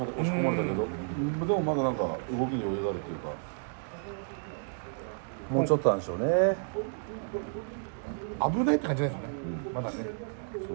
し込まれたけど、でもまだなんか動きに余裕があるっていうか。もうちょっとなんでしょうね。危ないって感じないですよね、まだね。そ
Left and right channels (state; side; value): silent; left; digital silence